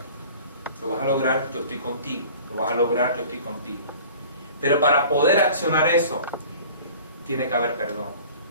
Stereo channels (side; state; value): both; inverted; correlation -0.45